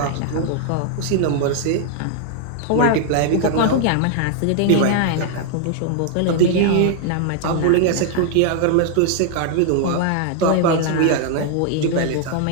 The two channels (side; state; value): both; different; correlation 0.00